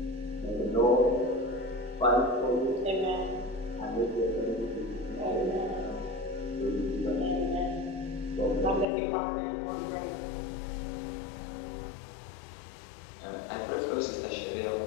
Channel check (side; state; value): right; drops out; at 8.8 s